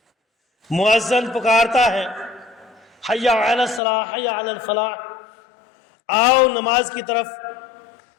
مؤذن پکارتا ہے حی علی الصلاۃ حی علی الفلاح، آؤ نماز کی طرف،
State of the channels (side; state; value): right; drops out; at 3.8 s